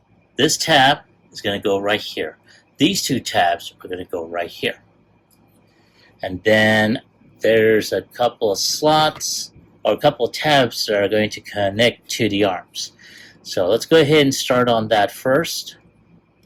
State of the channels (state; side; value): identical; both; correlation 1.00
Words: this tab is going to go right here. These two tabs are going to go right here. And then there's a couple of slots, or a couple of tabs that are going to connect to the arms. So let's go ahead and start on that first.